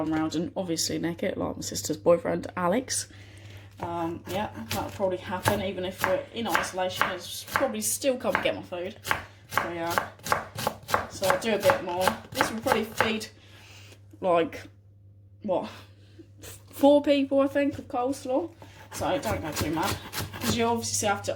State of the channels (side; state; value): both; identical; correlation 1.00